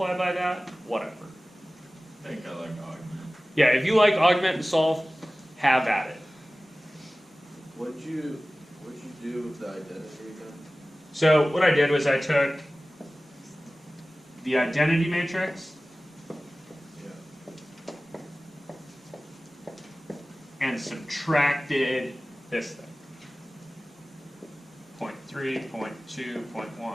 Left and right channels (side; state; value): both; normal; correlation 0.97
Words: by that, whatever. I think I like augment. Yeah, if you like augment and solve, have at it. What'd you do with the identity again? So what I did was I took the identity matrix Yeah. and subtracted this thing. 0.3, 0.2, 0.1,